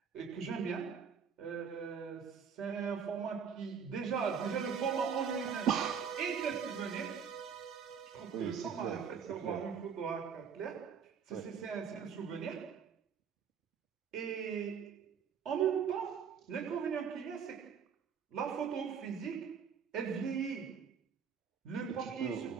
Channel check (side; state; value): left; quieter; 6.9 dB